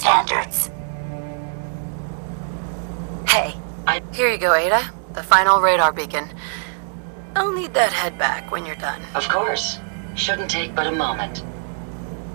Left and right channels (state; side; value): silent; left; 64 dB below the other